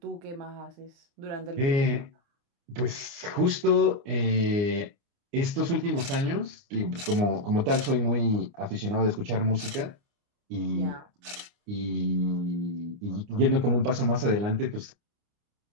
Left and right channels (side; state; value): left; late; 29 ms